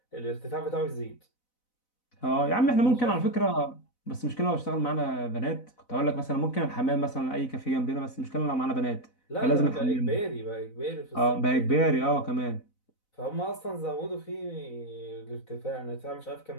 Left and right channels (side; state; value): right; late; 4.0 ms